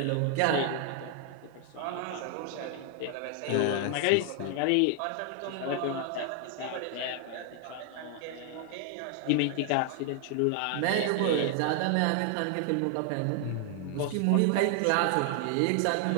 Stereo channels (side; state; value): both; different; correlation 0.00